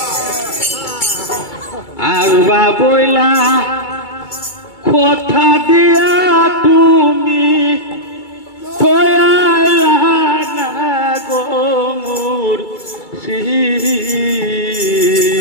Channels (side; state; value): right; late; 2.3 ms